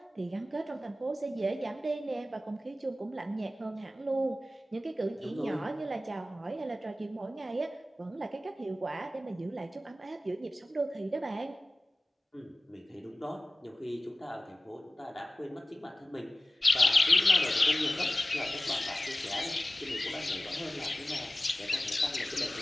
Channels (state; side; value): normal; both; correlation 0.96